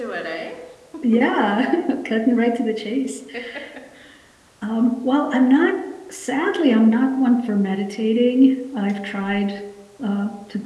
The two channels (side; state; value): both; identical; correlation 1.00